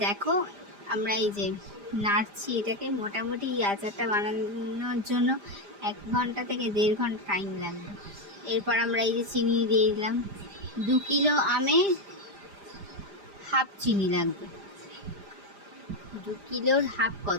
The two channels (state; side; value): late; left; 5.0 ms